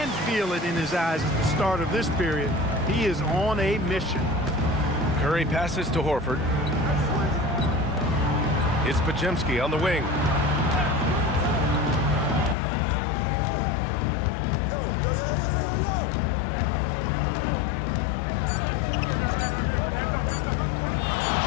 feel it in his eyes at the start of this period. He is on a mission. Curry passes to Horford. It's Podziemski on the wing.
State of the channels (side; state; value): right; drops out; at 12.6 s